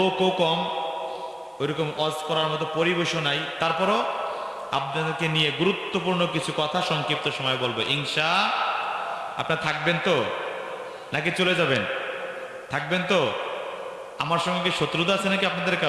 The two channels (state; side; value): identical; both; correlation 1.00